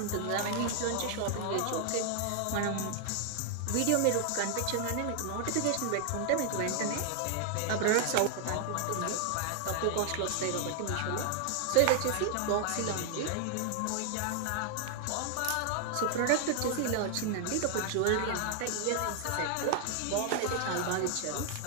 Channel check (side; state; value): both; different; correlation 0.00